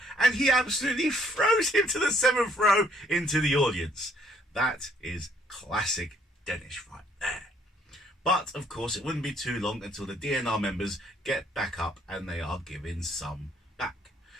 and he absolutely throws him to the 7th row into the audience. That is classic Dennis right there. But, of course, it wouldn't be too long until the DNR members get back up and they are given some back.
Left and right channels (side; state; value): both; normal; correlation 0.64